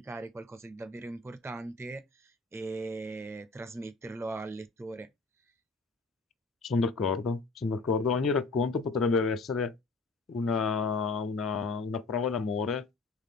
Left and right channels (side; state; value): right; quieter; 3.8 dB